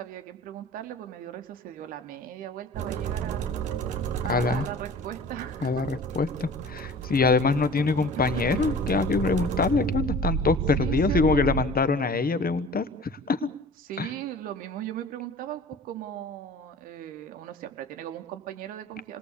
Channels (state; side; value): normal; both; correlation 0.43